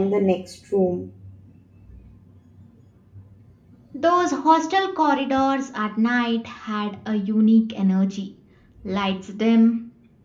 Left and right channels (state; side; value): identical; both; correlation 1.00